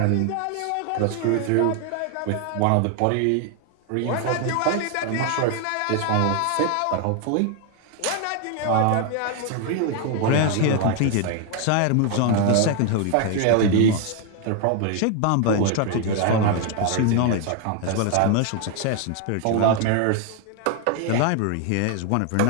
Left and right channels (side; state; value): both; different; correlation 0.01